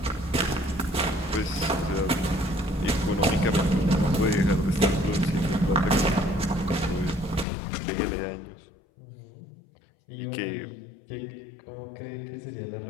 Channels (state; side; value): drops out; right; at 7.5 s